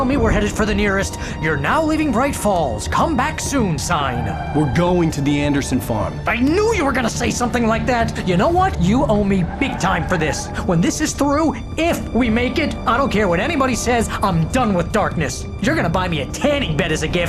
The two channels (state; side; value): identical; both; correlation 1.00